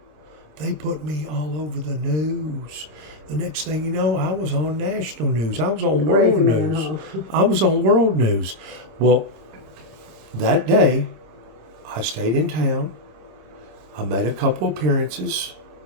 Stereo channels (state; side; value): late; left; 26 ms